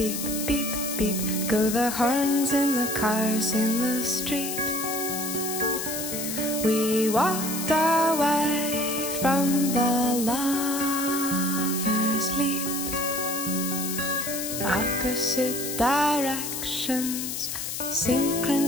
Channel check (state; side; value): noise; left; hiss, 4 dB below the sound